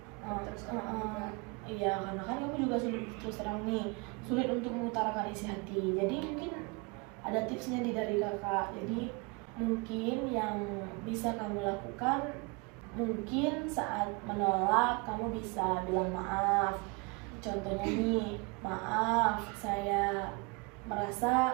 Iya, karena kan kamu juga sulit terus terang nih, sulit untuk mengutarakan isi hati. Jadi mungkin ada tipsnya dari kakak. Jadi mungkin yang bisa kamu lakukan, mungkin saat menolak kamu bisa bilang maaf. Contohnya nih, maaf, saya merasa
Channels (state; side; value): quieter; left; 29.0 dB